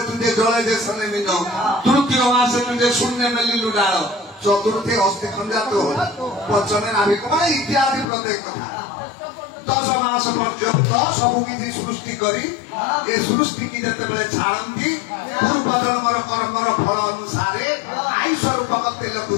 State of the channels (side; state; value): right; drops out; at 8.1 s